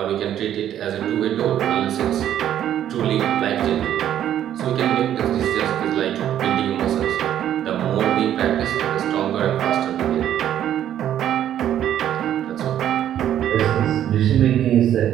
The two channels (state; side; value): quieter; left; 10.9 dB